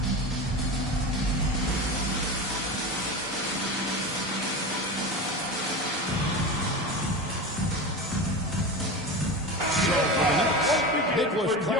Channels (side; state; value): both; normal; correlation 0.26